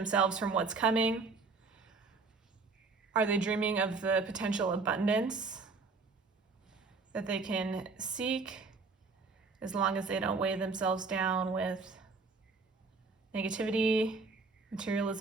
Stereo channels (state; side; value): quieter; left; 4.3 dB